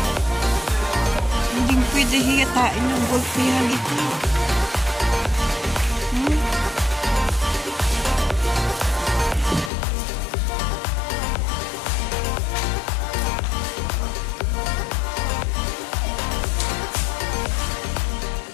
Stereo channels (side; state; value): right; drops out; at 9.7 s